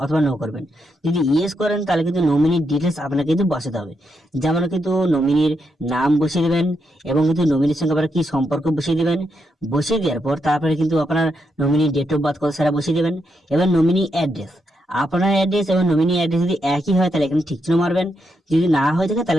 অথবা নো করবেন। যদি ইয়েস করেন তাহলে কিন্তু নমিনির ডিটেলস আপনাকে কিন্তু বসাতে হবে। যেমন কিন্তু নমিনির নাম বসিয়ে দেবেন এবং কিন্তু নমিনির সঙ্গে আপনার কি সম্পর্ক বসিয়ে দেবেন। বসিয়ে দেওয়ার পর তারপরে কিন্তু আপনার নমিনি ডেট অফ বার্থ কত সেটা বসিয়ে দেবেন। এবার নমিনি অ্যাড্রেস, আপনার অ্যাড্রেস এবং নমিনি অ্যাড্রেস যদি একই হয় তাহলে এখানে ঠিক চিহ্ন মারবেন। যদি না হয়ে থাকে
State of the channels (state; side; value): normal; both; correlation 0.81